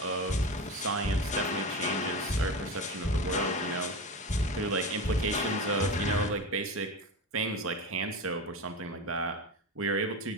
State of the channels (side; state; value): both; normal; correlation 0.24